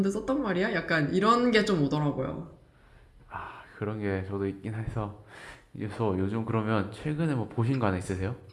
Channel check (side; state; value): both; identical; correlation 1.00